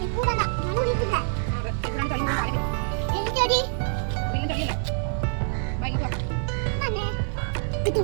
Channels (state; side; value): silent; left; digital silence